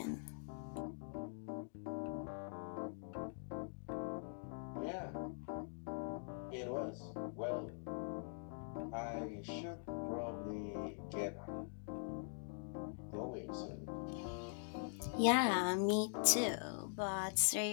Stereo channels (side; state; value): right; silent; digital silence